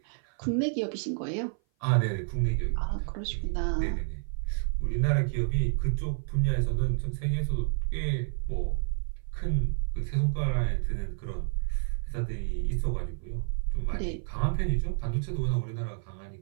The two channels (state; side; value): silent; left; 56 dB below the other